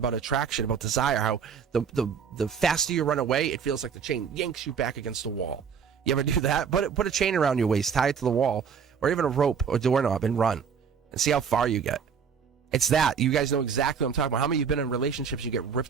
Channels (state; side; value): quieter; left; 6.8 dB